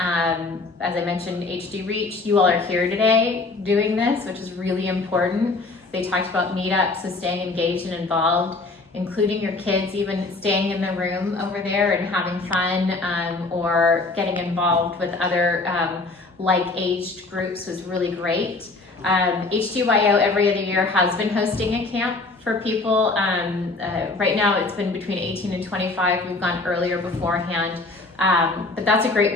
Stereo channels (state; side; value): quieter; right; 3.4 dB